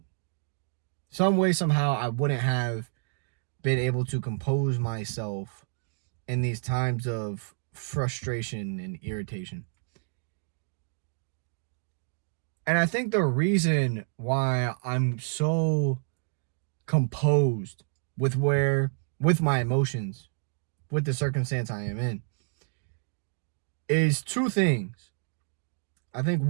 Some way, somehow, I wouldn't have been able to compose myself in these times of frustration and irritation. And I think the reason why I'm so composed with my emotions, with the circumstance I am in, is two things. I think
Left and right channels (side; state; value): left; silent; digital silence